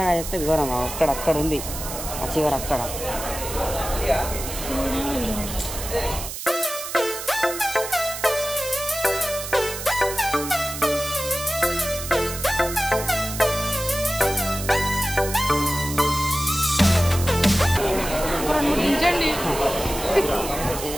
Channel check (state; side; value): noise; right; hiss, 8 dB below the sound